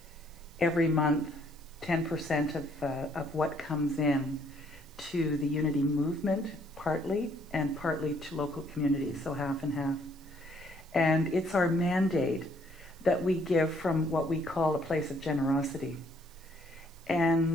every month 10% of what comes in to the Unity movement, partly, and partly to local communities, so half and half. And it's our mandate that we give from what we call a place of generosity.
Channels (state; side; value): noise; right; hiss, 27 dB below the sound